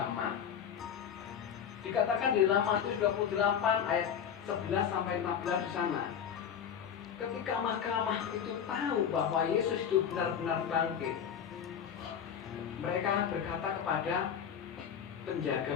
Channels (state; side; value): quieter; right; 8.2 dB